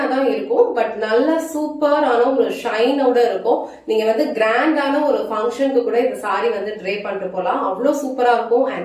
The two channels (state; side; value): identical; both; correlation 1.00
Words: தான் இருக்கும், பட் நல்ல சூப்பரான ஒரு ஷைனோட இருக்கும். நீங்க வந்து கிராண்டான ஒரு ஃபங்க்ஷனுக்கு கூட இந்த சாரி வந்து ட்ரே பண்ணிட்டு போலாம், அவ்வளவு சூப்பரா இருக்கும்.